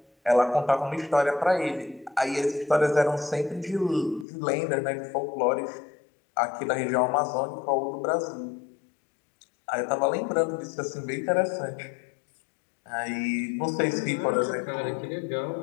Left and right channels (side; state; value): right; drops out; at 4.2 s